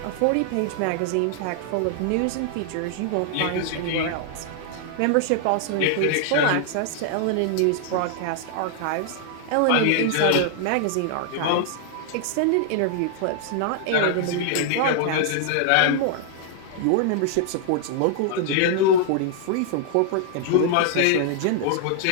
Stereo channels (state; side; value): different; both; correlation -0.01